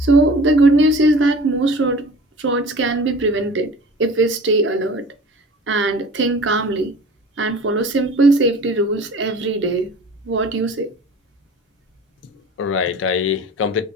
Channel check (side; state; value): both; normal; correlation 0.42